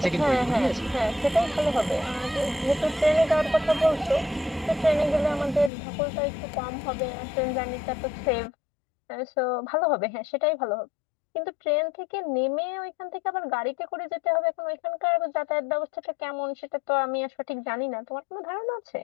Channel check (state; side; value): drops out; right; at 5.7 s